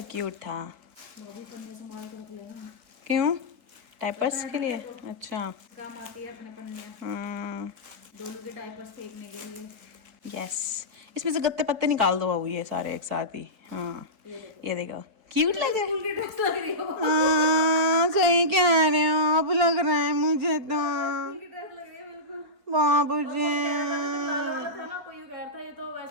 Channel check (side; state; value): left; late; 4.7 ms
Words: क्यूट था। वो भी पन्ने संभाल के रख लेना। क्यों? डायपर्स के लिए? अच्छा काम आती है अपने पन्नियाँ, हाँ डोलू के डायपर्स फेंकने के लिए। यस, इसमें से गत्ते पत्ते निकाल दो बाबू ये सारे एक साथ ही। हाँ ये देखो क्यूट लग रहा है। हाँ सही कह रहे हो आप, लग रहा है मुझे तो बाबू जी। ये तो